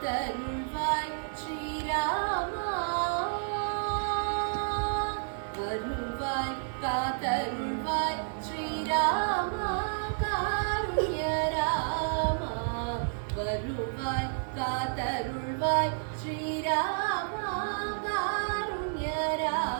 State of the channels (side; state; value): left; silent; digital silence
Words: ஸ்ரீராமா வருவாய் காத்தருள்வாய் ஸ்ரீராமா காருண்ய ராமா வருவாய் காத்தருள்வாய் ஸ்ரீராமா காருண்ய